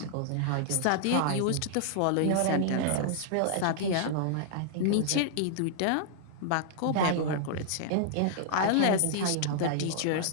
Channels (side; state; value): both; different; correlation -0.01